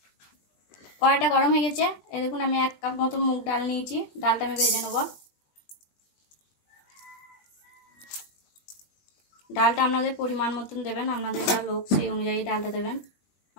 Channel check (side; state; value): right; late; 20 ms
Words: কড়াইটা গরম হয়ে গেছে। এই দেখুন, আমি 1 কাপ মতো মুগ ডাল নিয়েছি। ডালটা আমি ভেজে নেব। ডালটা আপনাদের পরিমাণ মতন দেবেন, আপনাদের যা লোক সেই অনুযায়ী ডালটা দেবেন।